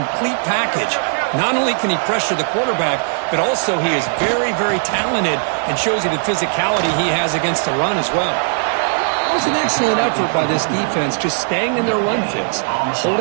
package. Not only can he pressure the quarterback, but also he is very, very talented and shows you the physicality he has against the run as well. It was an excellent effort by this defense, just staying in their run fits,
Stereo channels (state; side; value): silent; left; 67 dB below the other